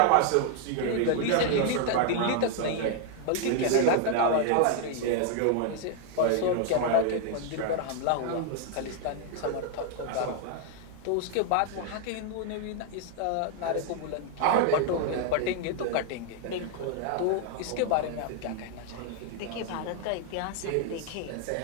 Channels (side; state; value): both; different; correlation 0.00